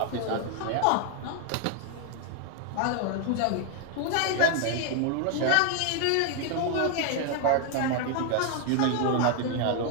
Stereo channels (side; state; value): both; different; correlation 0.01